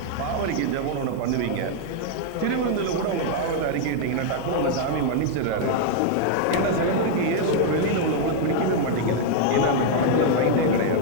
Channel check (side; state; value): both; different; correlation 0.00